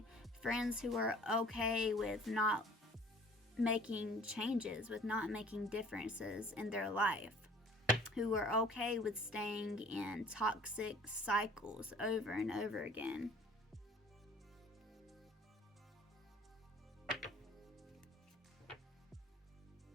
Friends who are okay with not making changes, with not making differences in their life. Who are okay with staying in toxic cycles over and over again.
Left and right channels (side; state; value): both; normal; correlation 0.51